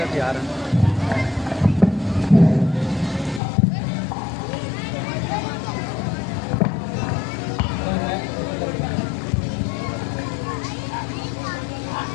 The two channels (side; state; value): right; drops out; at 3.4 s